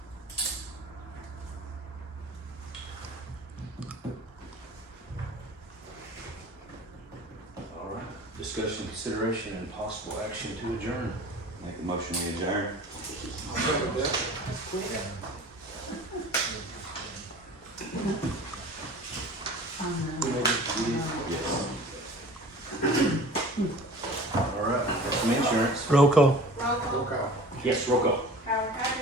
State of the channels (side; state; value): both; normal; correlation 0.42